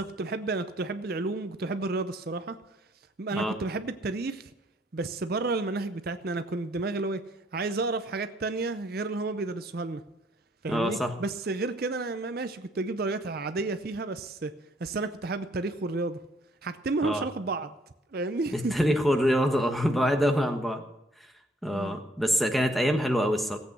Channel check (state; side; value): normal; both; correlation 0.64